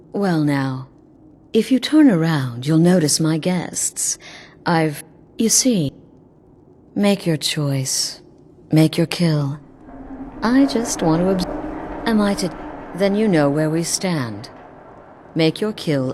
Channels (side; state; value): both; identical; correlation 1.00